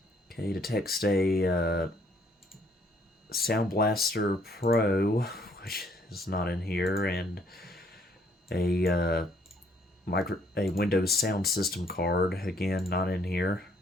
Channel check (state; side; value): normal; both; correlation 0.65